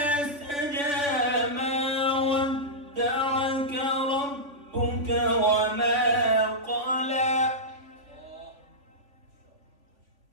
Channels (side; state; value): left; late; 3.5 ms